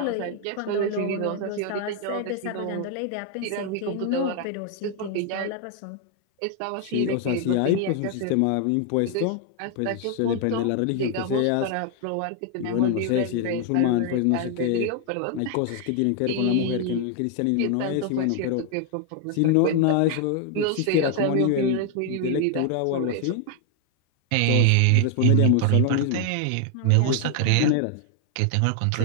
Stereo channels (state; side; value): different; both; correlation 0.00